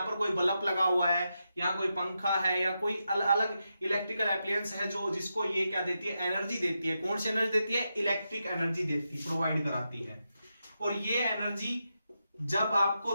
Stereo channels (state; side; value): inverted; both; correlation -0.87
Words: पर कोई बल्ब लगा हुआ है, यहाँ कोई पंखा है या कोई अलग इलेक्ट्रिकल एप्लायंस है जो जिसको ये क्या देती है, एनर्जी देती है। कौन सी एनर्जी देती है? इलेक्ट्रिक एनर्जी देती, प्रोवाइड कराती है। और ये एनर्जी जब